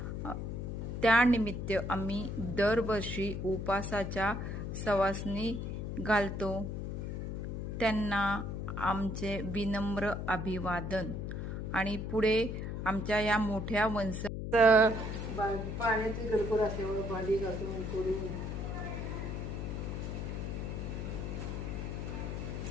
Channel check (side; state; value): left; noise; hum, 4 dB below the sound